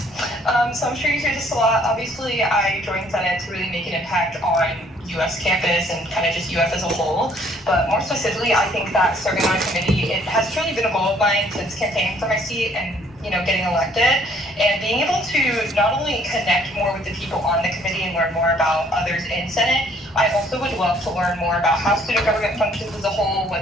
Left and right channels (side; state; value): both; normal; correlation 0.62